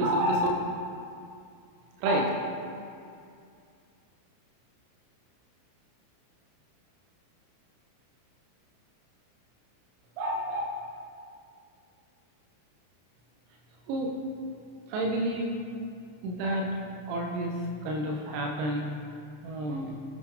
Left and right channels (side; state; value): left; late; 33 ms